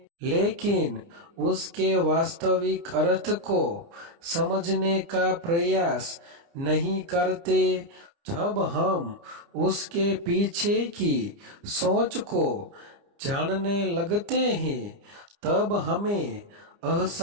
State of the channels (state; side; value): late; left; 29 ms